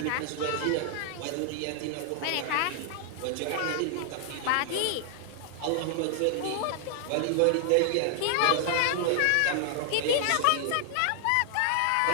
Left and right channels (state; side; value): different; both; correlation 0.00